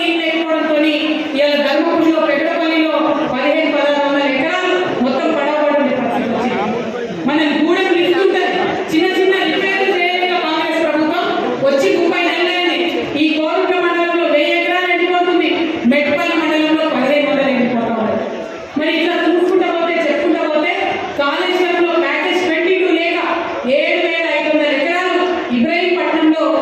లేకపోవడంతో ఇవాళ ధర్మపురిలో, పెద్దపల్లిలో 1500-1600 ఎకరాలు మొత్తం పడవబడి పరిస్థితి వచ్చింది. మన గూడెం నిలుస్తుంటుంది, చిన్న చిన్న రిపేర్లు చేయలేక కాంగ్రెస్ ప్రభుత్వం వచ్చి 30 నెలలైంది. ఈ కోరుట్ల మండలంలో 1000 ఎకరాలు ఎండిపోతుంది, మెట్పల్లి మండలంలో 1500 ఎండిపోతా ఉంది. మరి ఇట్లా చూసుకుంటా పోతే, చెప్పుకుంటా పోతే కాళేశ్వరంలో ప్యాకేజ్ 22 లేక 7500 ఎకరాలు ఇబ్రహీంపట్నంలో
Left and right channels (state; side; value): identical; both; correlation 1.00